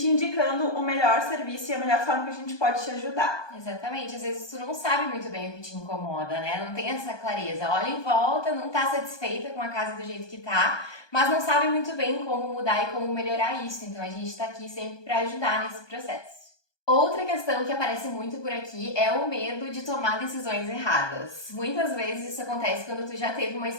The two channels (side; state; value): right; late; 1.2 ms